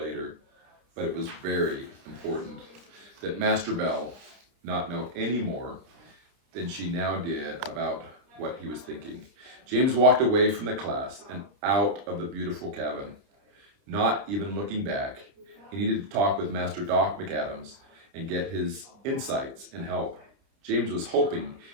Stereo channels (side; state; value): left; late; 30 ms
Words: but it was very important that Master Bell not know any more than she now did about what he was thinking. James walked away from the class and out of the beautiful cabin, not even looking back. He needed to talk with Master Doc McAdams and get his insights and help. James was hoping